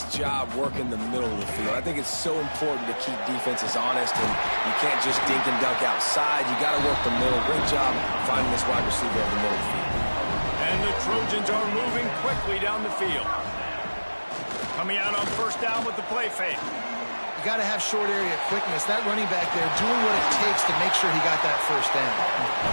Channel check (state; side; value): inverted; both; correlation -1.00